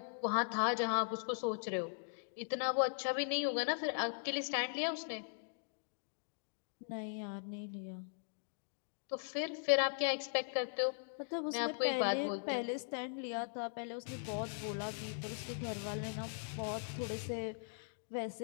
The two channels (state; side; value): silent; right; digital silence